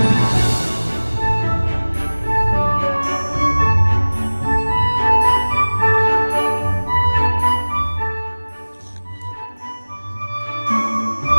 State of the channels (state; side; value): inverted; both; correlation -1.00